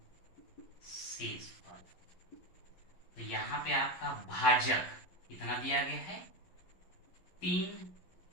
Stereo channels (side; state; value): right; late; 11 ms